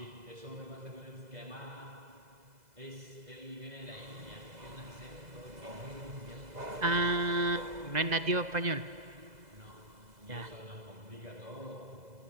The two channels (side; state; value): left; late; 2.0 ms